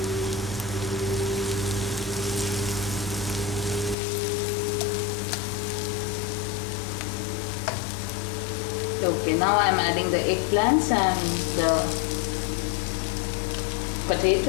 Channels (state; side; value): drops out; right; at 4.0 s